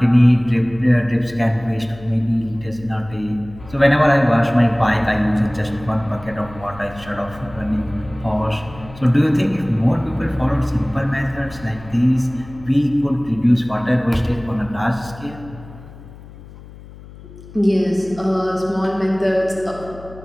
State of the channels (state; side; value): noise; left; hum, 18 dB below the sound